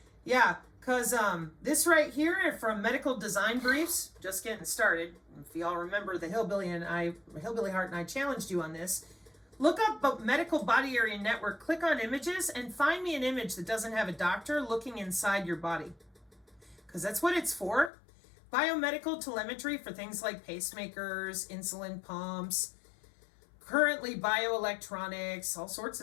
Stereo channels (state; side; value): drops out; right; at 17.9 s